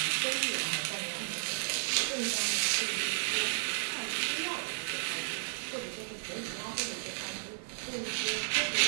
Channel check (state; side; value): silent; left; 55 dB below the other